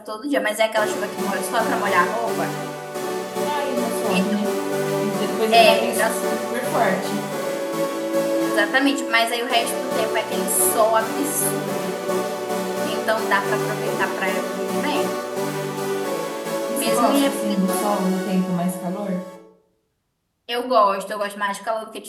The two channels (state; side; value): identical; both; correlation 1.00